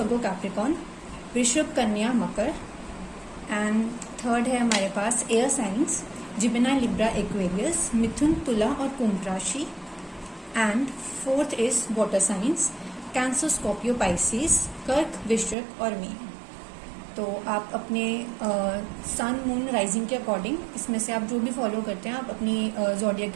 Capricorn, वृषभ, कन्या, मकर। एंड थर्ड है हमारे पास air signs, Gemini, Libra, Aquarius, मिथुन, तुला और कुंभ राशि। And fourth is water signs, Cancer, Scorpio, Pisces, कर्क, वृश्चिक और मीन। तो आप अपने सन, मून, राइजिंग के अकॉर्डिंग इसमें से आप जो भी फॉलो करते हैं आप अपनी ज़ोडिएक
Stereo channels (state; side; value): drops out; left; at 15.6 s